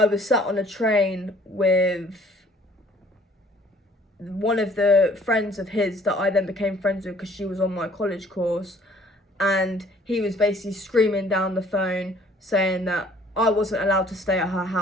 was sat on a train with one of the friends of his that I then became friends with because she was on my college course, and he was basically screaming down the phone saying that I wasn't allowed to stay at her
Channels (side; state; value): both; normal; correlation 0.57